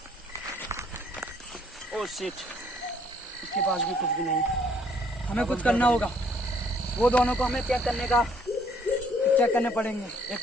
ओह शिट, इसके पास भी कुछ भी नहीं। हमें कुछ करना होगा। वो दोनों को हमें चेक करने पड़ेंगे। एक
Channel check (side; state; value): both; normal; correlation 0.64